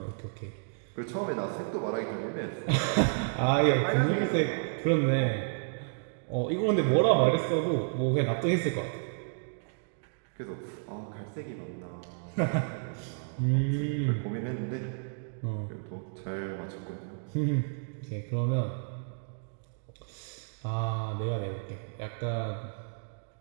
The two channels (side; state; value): left; silent; digital silence